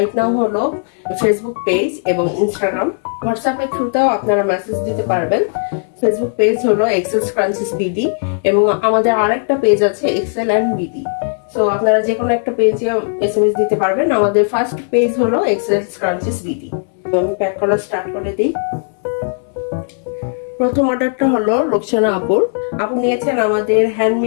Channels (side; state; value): right; silent; 68 dB below the other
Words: নাও হলো ফেসবুক পেজ এবং ইনস্টাগ্রাম। হোয়াটসঅ্যাপের থ্রুতেও আপনারা মেসেজ দিতে পারবেন। ফেসবুক পেজ হলো এক্সেল স্ক্রাঞ্চিস বিডি এবং আমাদের আরেকটা পেজ আছে এক্সেল অ্যান্ড বিডি। সো আপনারা যে কোনো একটা পেজে এসএমএস দিতে পারবেন। আমাদের ফার্স্ট পেজ হলো এক্সেল স্ক্রাঞ্চিস বিডি। আমি প্যাক করা স্টার্ট করে দিই। প্রথম অর্ডারটা হলো রোকসানা আপুর। আপু নিয়েছেন আমাদের